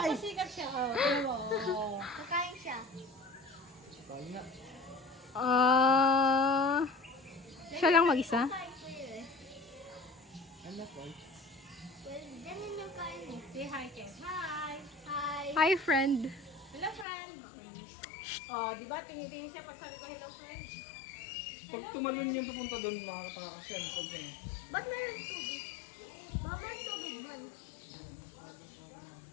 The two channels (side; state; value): right; drops out; at 17.1 s